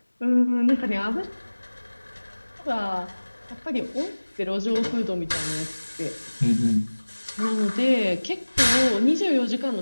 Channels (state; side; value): inverted; both; correlation -1.00